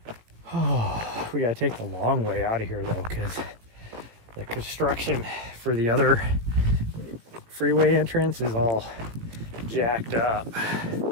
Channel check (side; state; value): left; late; 18 ms